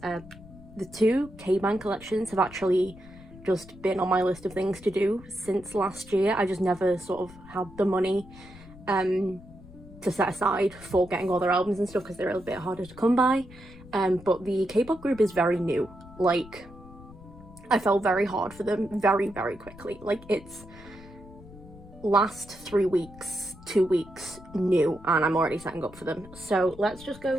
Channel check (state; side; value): noise; left; rumble, 19 dB below the sound